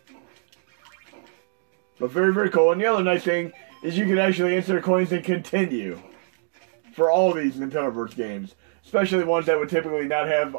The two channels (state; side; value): silent; left; digital silence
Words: But very, very cool. And the other nice thing is you can actually insert coins and continue for all these Nintendo Verse games. Especially ones that would typically not have